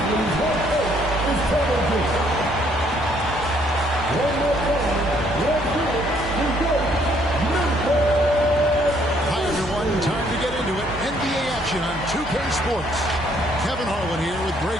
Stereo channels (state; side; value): normal; both; correlation 0.66